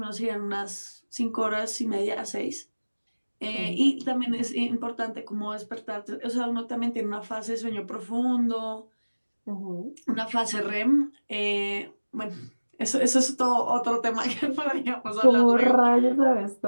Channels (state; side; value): inverted; both; correlation -1.00